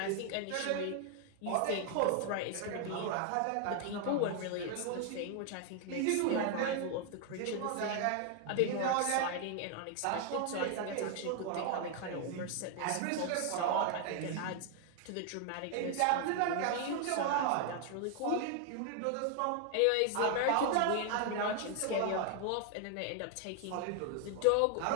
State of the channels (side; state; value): both; different; correlation 0.00